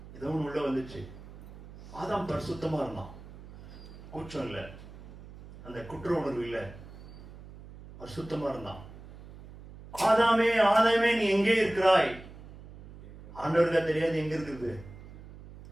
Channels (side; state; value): right; noise; hum, 16 dB below the sound